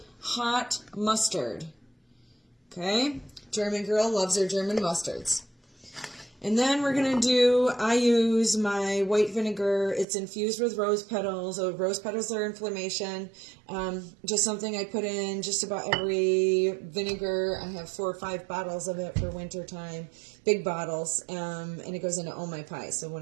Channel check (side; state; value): left; drops out; at 10.1 s